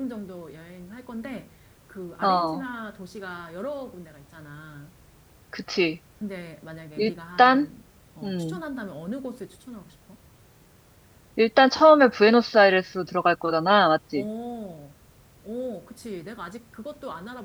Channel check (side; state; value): both; identical; correlation 1.00